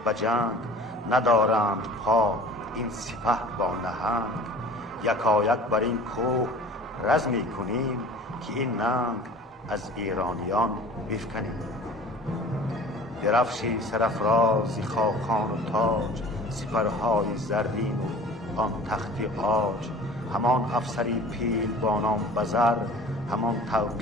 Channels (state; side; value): normal; both; correlation 0.44